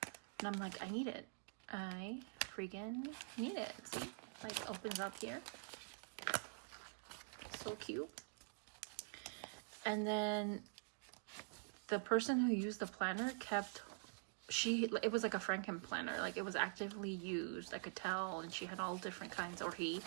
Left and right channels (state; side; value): silent; left; digital silence